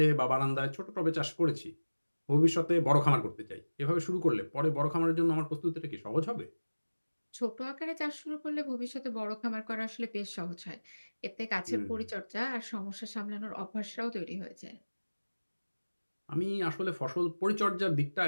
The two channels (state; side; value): inverted; both; correlation -1.00